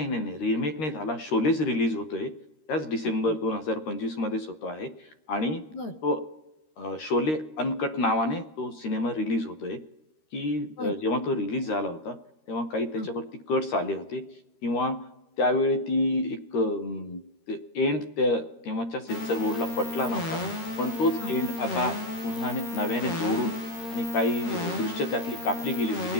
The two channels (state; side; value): late; right; 13 ms